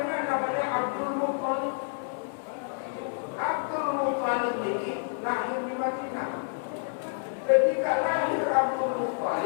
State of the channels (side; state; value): right; silent; digital silence